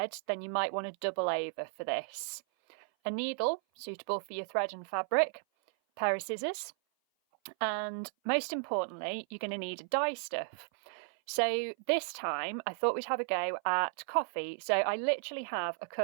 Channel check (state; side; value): silent; left; 55 dB below the other